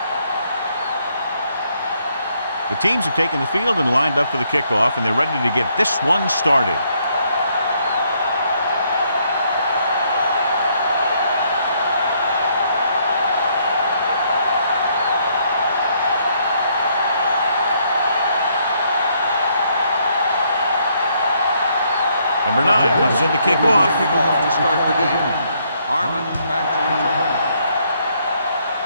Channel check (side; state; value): both; inverted; correlation -0.71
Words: The teams have taken the field and lined up for the kickoff, and they're ready to get this one started. Number 9 comes in to kick off. To start the game. Harmon back to return.